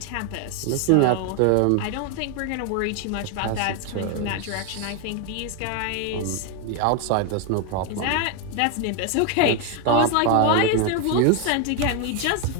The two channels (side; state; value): both; different; correlation 0.01